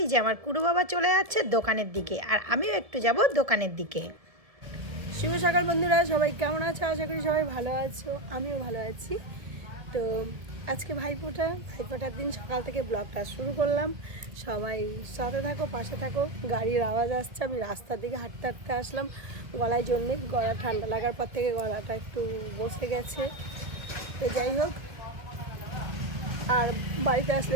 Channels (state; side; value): late; left; 1.5 ms